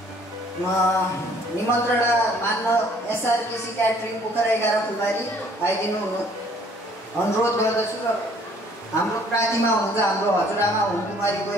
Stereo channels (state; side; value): normal; both; correlation 0.58